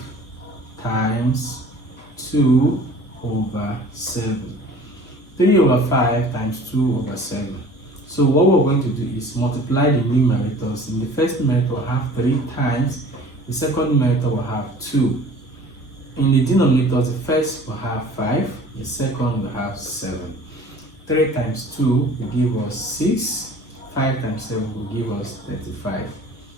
times 2 over 7. 3 over 5 times 2 over 7. So what we're going to do is multiply the numerators. In the first numerator, we'll have 3 times. The second numerator will have 2. In the denominators, the first will have 5. The second will have 7. 3 times 2 will give us 6. 5 times 7 will give us 35.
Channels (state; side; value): normal; both; correlation 0.47